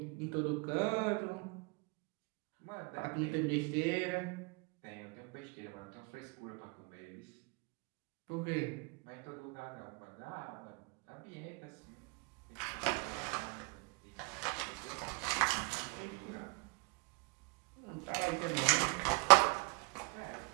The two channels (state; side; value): quieter; left; 29.5 dB